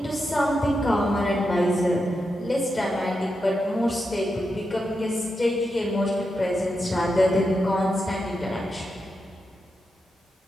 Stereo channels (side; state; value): both; normal; correlation 0.87